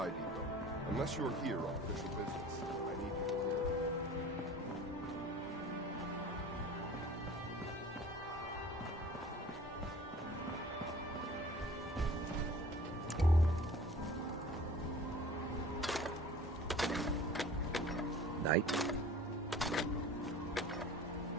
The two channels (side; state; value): both; normal; correlation 0.44